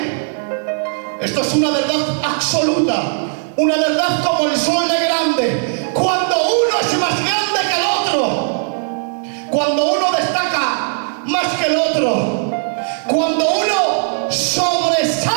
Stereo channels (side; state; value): left; silent; digital silence